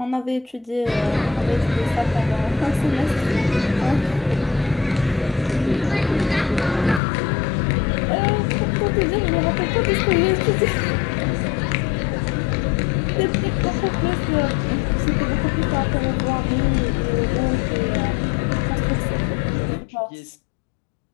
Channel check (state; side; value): drops out; right; at 7.0 s